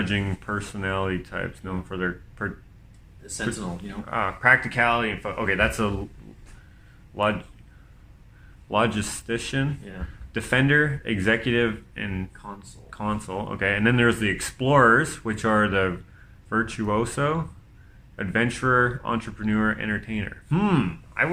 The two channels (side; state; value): both; identical; correlation 1.00